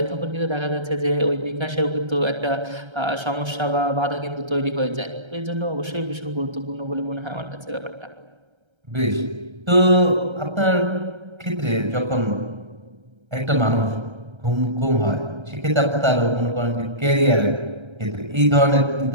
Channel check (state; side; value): late; left; 1.3 ms